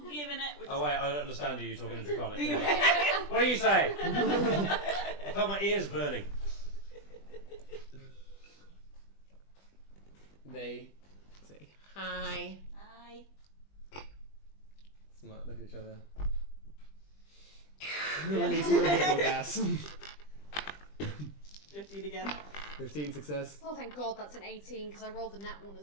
giving it. We're Oh wait, I don't understand you. You're talking in Draconic. What do you say? I felt my ears burning. They say hi. Hi. Look at each other. Release more giggle gas. 15 again. 15 success. Oh, thank God, that's an 18 because I rolled a nat one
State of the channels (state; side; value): late; right; 20 ms